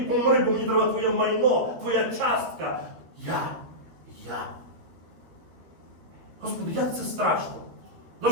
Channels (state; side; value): late; left; 13 ms